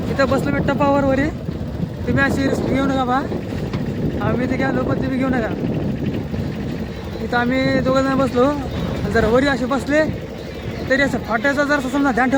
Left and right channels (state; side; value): identical; both; correlation 1.00